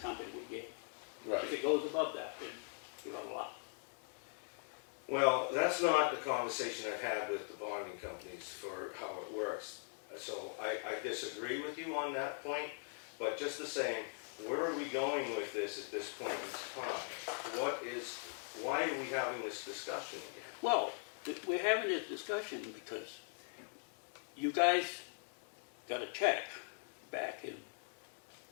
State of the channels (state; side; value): silent; right; 50 dB below the other